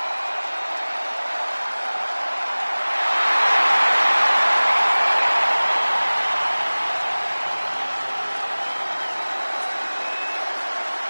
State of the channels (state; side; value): inverted; both; correlation -1.00